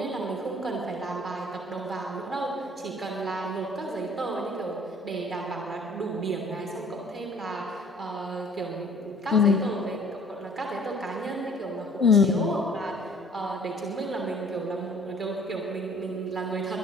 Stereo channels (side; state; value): both; normal; correlation 0.54